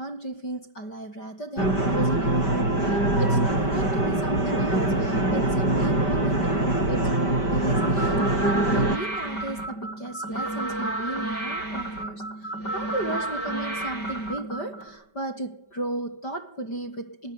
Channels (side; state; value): right; late; 5.1 ms